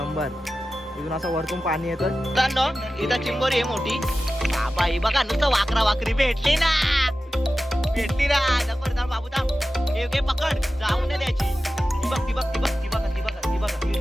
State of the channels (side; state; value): both; normal; correlation 0.94